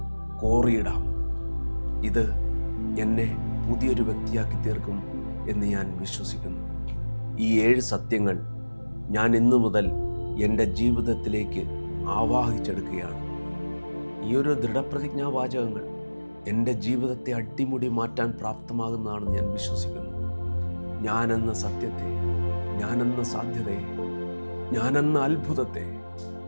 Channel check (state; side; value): inverted; both; correlation -1.00